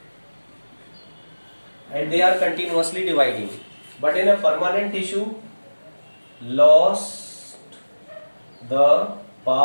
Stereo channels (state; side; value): inverted; both; correlation -1.00